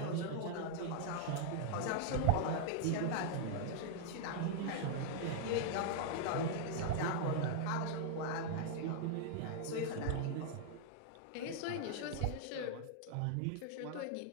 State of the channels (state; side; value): different; both; correlation -0.01